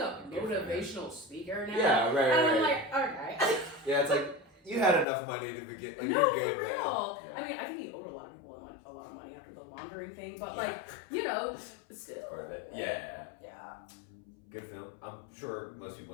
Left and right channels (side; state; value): right; drops out; at 5.1 s